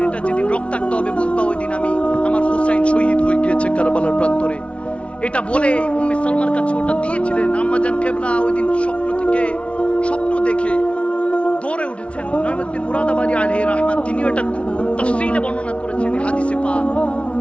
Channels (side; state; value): right; late; 0.061 ms